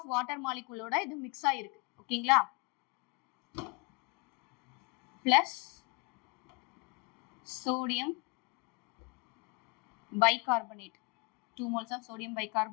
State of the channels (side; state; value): right; quieter; 29.5 dB